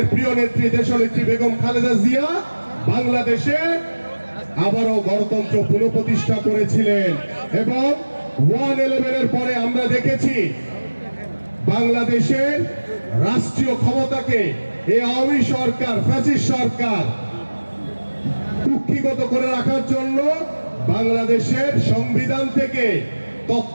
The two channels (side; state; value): both; inverted; correlation -1.00